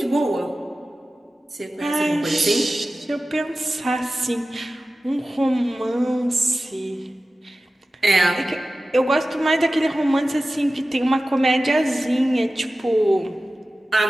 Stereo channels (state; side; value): normal; both; correlation 0.95